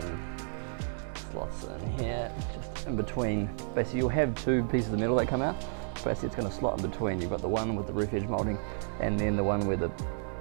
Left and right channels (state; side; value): silent; left; digital silence